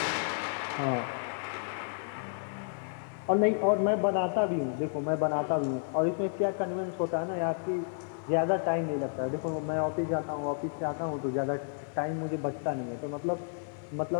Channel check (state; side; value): silent; right; 57 dB below the other